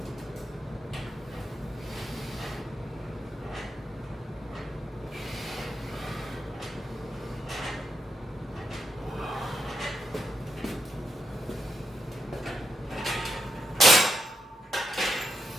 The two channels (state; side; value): normal; both; correlation 0.84